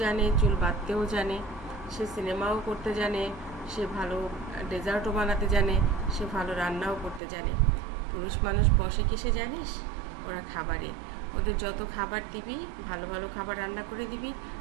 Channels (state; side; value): drops out; left; at 7.2 s